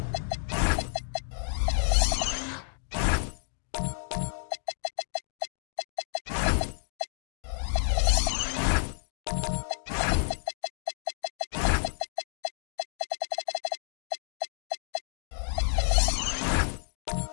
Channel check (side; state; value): right; silent; digital silence